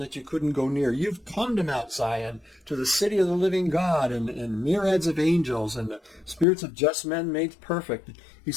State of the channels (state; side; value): drops out; right; at 6.5 s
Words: you couldn't go near. You've come to Mount Zion, to the city of the living God, and myriads of angels, and the spirits of just men made perfect.